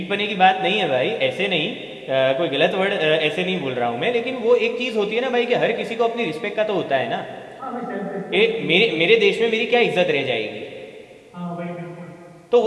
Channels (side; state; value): both; identical; correlation 1.00